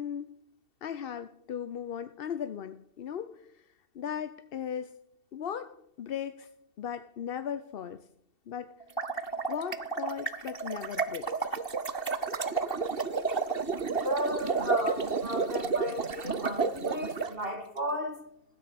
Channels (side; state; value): right; late; 2.7 ms